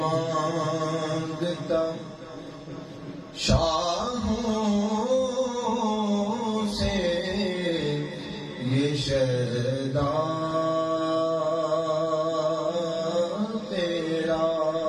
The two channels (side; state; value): both; identical; correlation 1.00